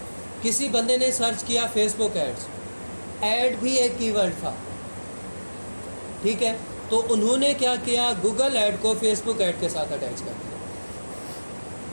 किसी बंदे ने सर्च किया फेसबुक एड्स, ऐड भी एक कीवर्ड था, ठीक है। तो उन्होंने क्या किया, गूगल ऐड को फेसबुक ऐड के साथ अटैच कर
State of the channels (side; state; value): both; inverted; correlation -1.00